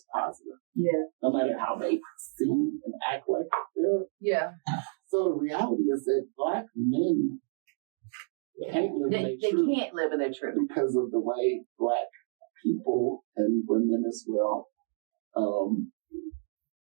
positive. Yeah. No matter how they seem and act like they're. Yeah. So the reality is that Black men can't live in their truth. They can't live in their truth. Because of the way Black people and women as well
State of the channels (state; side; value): silent; left; digital silence